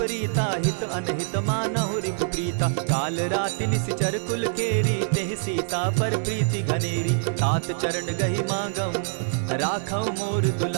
हित अनहित मानहु रिपु प्रीता। काल राति निशिचर कुल केरी, तेहि सीता पर प्रीति घनेरी। तात चरण गहि मांगऊं, राखऊं मोर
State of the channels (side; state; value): left; silent; digital silence